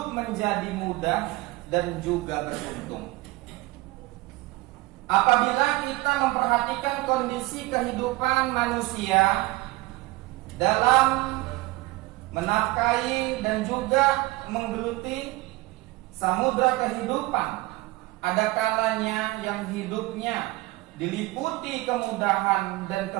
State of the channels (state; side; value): quieter; left; 20.4 dB